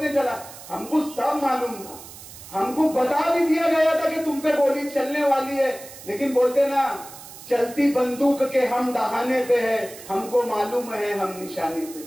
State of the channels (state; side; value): noise; right; hiss, 16 dB below the sound